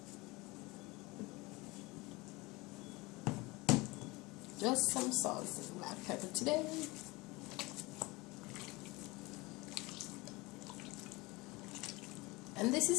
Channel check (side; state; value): right; quieter; 23.3 dB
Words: Just some salt and black pepper today. And this